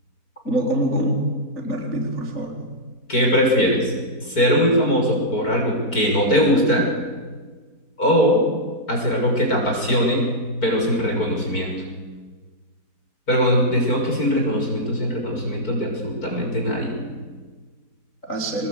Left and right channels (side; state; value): right; late; 4.5 ms